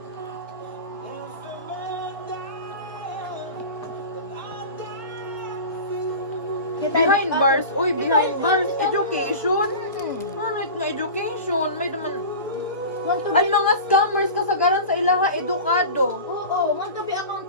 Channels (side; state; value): both; inverted; correlation -0.32